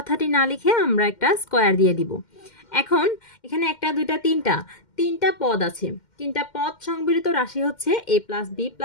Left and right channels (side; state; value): right; late; 2.1 ms